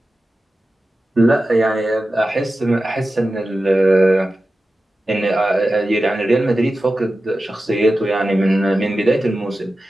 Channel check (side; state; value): both; normal; correlation 0.93